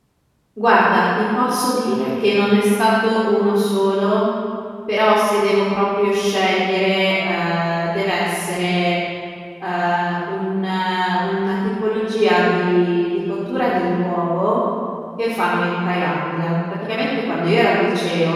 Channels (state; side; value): identical; both; correlation 1.00